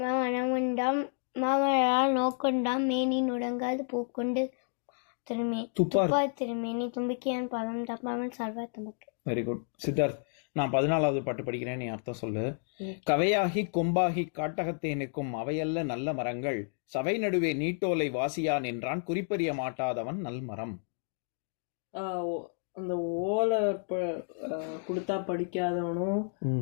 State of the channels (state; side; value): silent; right; 57 dB below the other